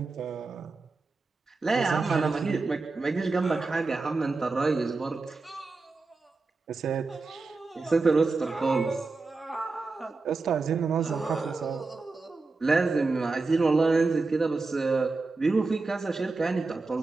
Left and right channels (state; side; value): quieter; left; 3.8 dB